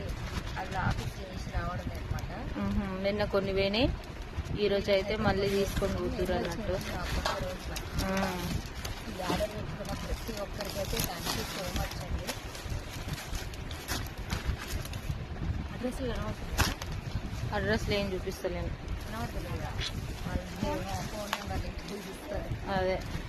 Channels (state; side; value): identical; both; correlation 1.00